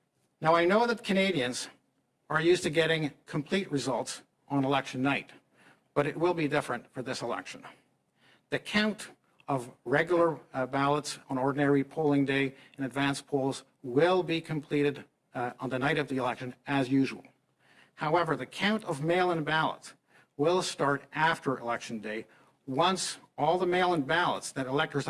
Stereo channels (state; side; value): identical; both; correlation 1.00